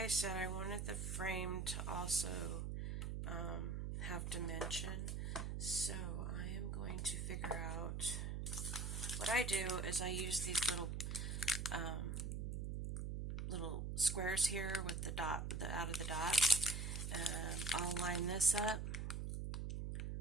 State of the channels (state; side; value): noise; right; hum, 3 dB below the sound